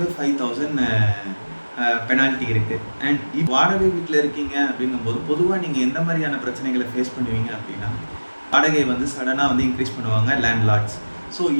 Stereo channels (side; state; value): both; inverted; correlation -1.00